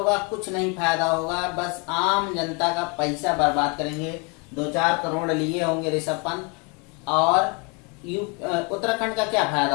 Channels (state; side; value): quieter; right; 32.2 dB